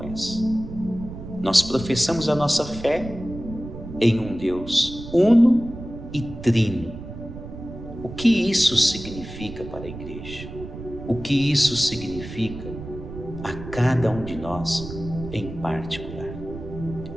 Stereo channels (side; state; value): right; noise; rumble, 11 dB below the sound